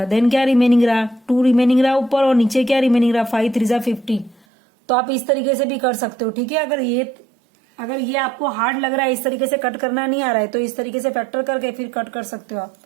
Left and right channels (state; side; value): drops out; left; at 4.4 s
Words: देन क्या रिमेनिंग रहा 2 रिमेनिंग रहा ऊपर, और नीचे क्या रिमेनिंग रहा 5 3 जा 15। तो आप इस तरीके से भी कर सकते हो। ठीक है, अगर ये आपको हार्ड लग रहा है, इस तरीके से कट करना नहीं आ रहा है, तो इस तरीके से फैक्टर करके फिर कट कर सकते हो आप।